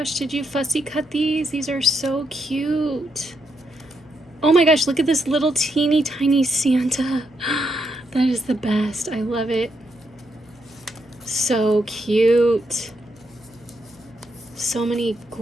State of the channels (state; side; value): noise; left; hum, 28 dB below the sound